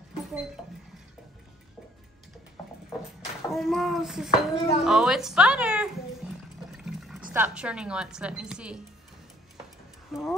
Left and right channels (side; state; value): both; normal; correlation 0.60